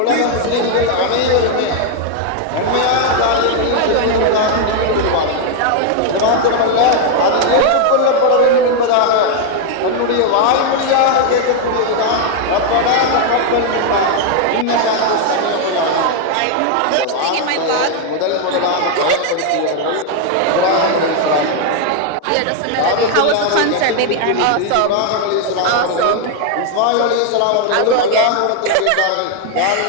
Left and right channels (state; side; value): different; both; correlation 0.00